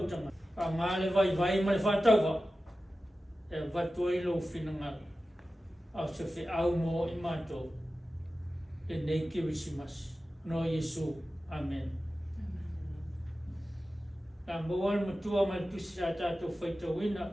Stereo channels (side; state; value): both; normal; correlation 0.94